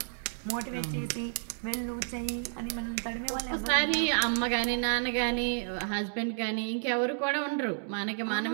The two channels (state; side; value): silent; left; digital silence